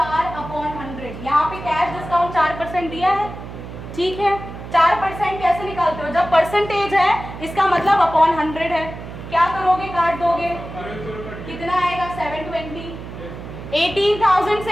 यहाँ पे कैश डिस्काउंट 4% दिया है। ठीक है, 4% कैसे निकालते हो? जब परसेंटेज है इसका मतलब अपॉन 100 है। क्या करोगे? काट दोगे। कितना आएगा? 720। 18,000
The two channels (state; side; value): noise; right; hum, 11 dB below the sound